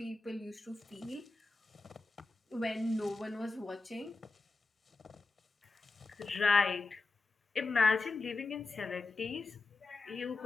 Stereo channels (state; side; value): quieter; right; 3.7 dB